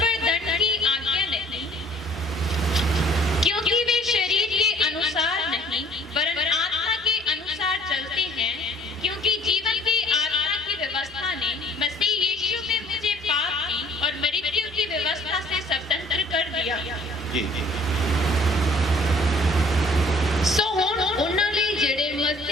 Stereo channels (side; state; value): both; normal; correlation 0.56